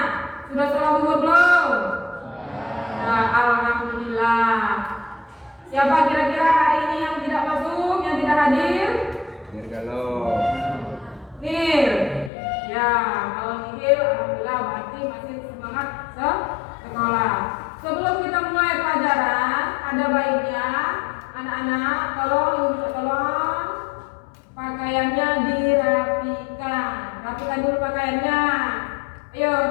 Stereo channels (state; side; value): drops out; right; at 12.3 s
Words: sudah sholat zuhur belum? Nah, alhamdulillah. Siapa kira-kira hari ini yang tidak masuk, yang tidak hadir? Kalau Nir. Ya, kalau Nir, alhamdulillah berarti masih semangat sekolah. Sebelum kita mulai pelajaran, ada baiknya anak-anak tolong pakaiannya dirapikan. Rapikan dulu pakaiannya. Ayo,